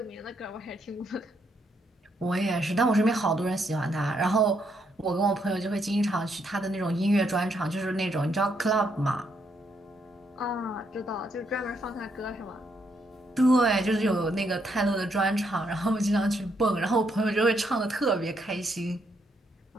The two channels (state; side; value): normal; both; correlation 0.75